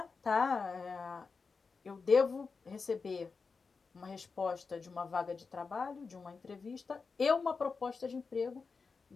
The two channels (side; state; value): right; quieter; 4.8 dB